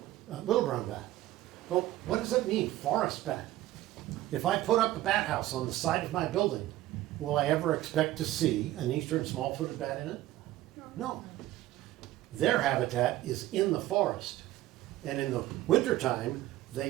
little brown bat. Well, what does it mean, forest bat? If I put up a bat house on the side of my building, will I ever expect to see an eastern small-footed bat in it? No. Their habitat is in the forest. And in the wintertime, they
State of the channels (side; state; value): left; quieter; 15.3 dB